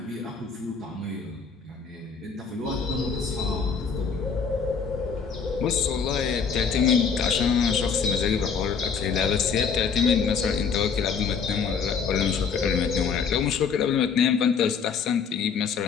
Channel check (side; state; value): right; quieter; 6.0 dB